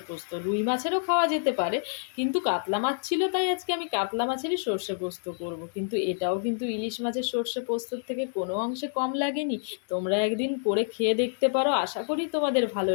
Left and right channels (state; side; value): silent; right; digital silence